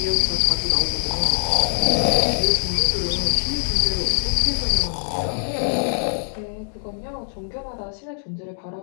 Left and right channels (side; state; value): right; silent; digital silence